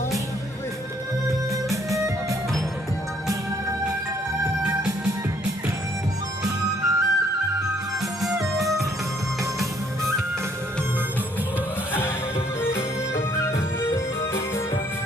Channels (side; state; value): both; normal; correlation 0.65